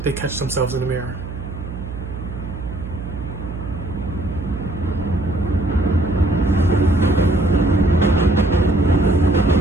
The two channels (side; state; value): right; noise; hum, 9 dB below the sound